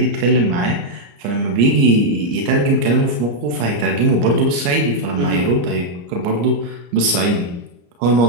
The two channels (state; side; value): late; left; 34 ms